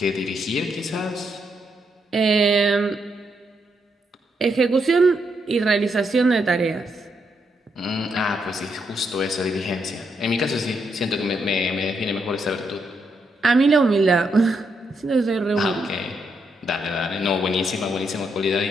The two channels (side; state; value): both; normal; correlation 0.79